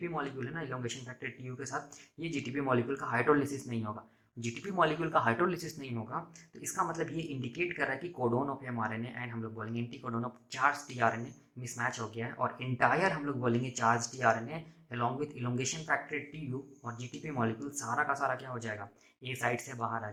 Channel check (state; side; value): identical; both; correlation 1.00